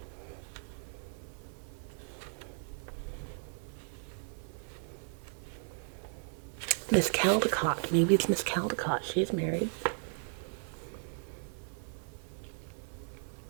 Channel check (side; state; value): left; silent; 54 dB below the other